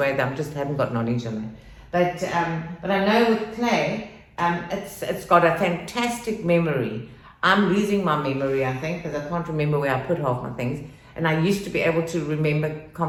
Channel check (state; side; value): identical; both; correlation 1.00